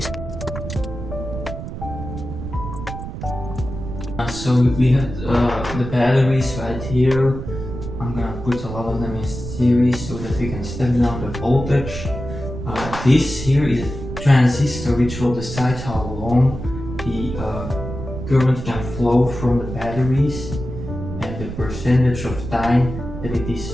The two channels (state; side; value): noise; right; rumble, 8 dB below the sound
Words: So we have the batteries right here. I'm gonna put a lot of them in series so that we can step down the voltage. This here is a transistor which will decide how long the current can flow from the batteries, and the percentage of time that it